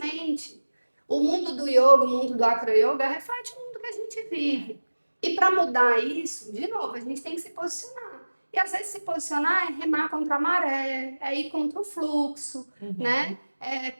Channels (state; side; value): inverted; both; correlation -1.00